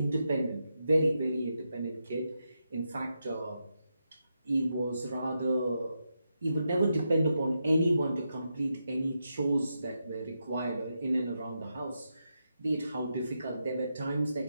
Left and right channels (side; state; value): both; inverted; correlation -0.85